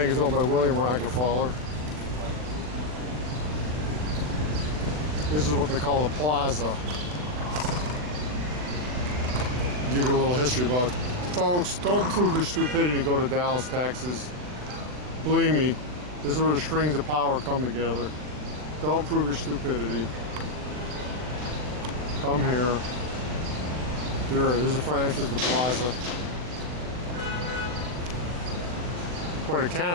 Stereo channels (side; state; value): left; late; 40 ms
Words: is owned by William Rockefeller. This is what they call the plaza. Give you a little history about it. Folks, don't prove your stupidity and go to Dallas, Texas. Believe me, this is where the strings of power come together. Don't prove your stupidity. Come here. There's a front entrance to the plaza. Quite a